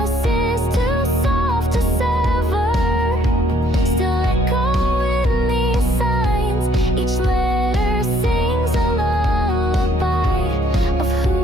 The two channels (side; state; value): both; normal; correlation 0.64